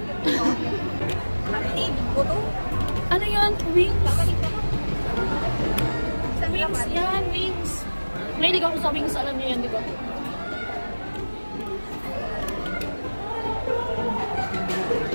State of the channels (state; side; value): inverted; both; correlation -1.00